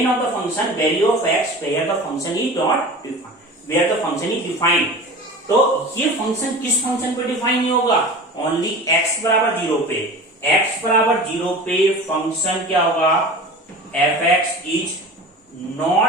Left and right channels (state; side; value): normal; both; correlation 0.35